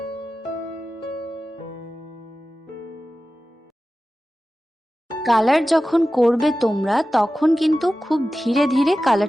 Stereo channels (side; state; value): both; normal; correlation 0.95